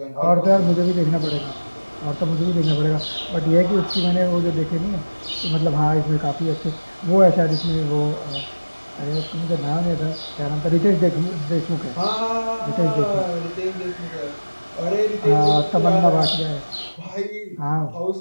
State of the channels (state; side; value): inverted; both; correlation -1.00